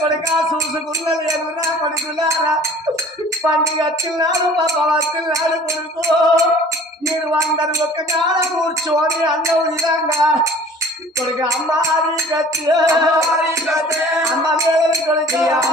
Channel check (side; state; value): both; normal; correlation 0.48